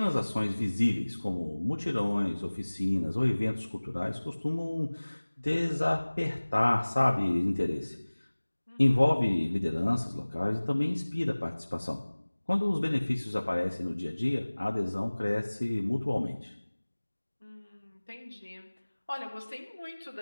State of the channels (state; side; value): inverted; both; correlation -1.00